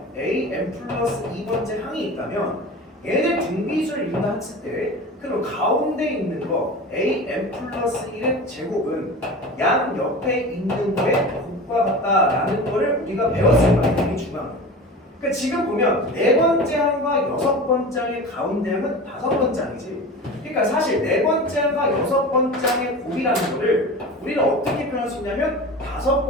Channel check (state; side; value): normal; both; correlation 0.33